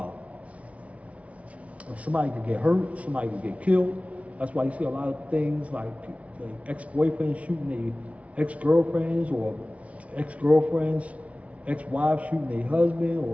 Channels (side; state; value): left; late; 0.065 ms